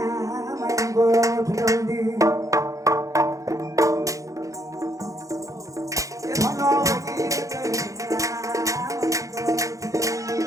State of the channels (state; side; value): late; left; 0.16 ms